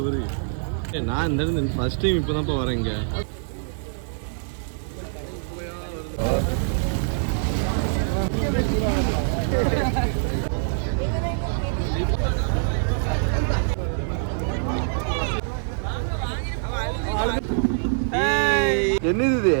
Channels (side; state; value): left; silent; digital silence